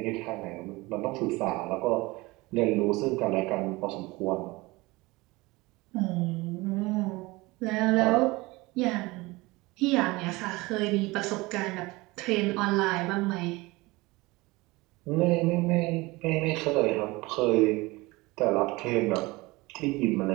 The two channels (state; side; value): quieter; left; 22.3 dB